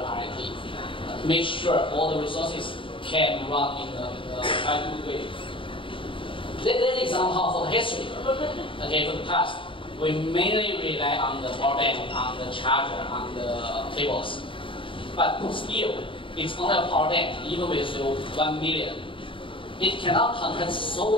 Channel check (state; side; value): late; right; 0.25 ms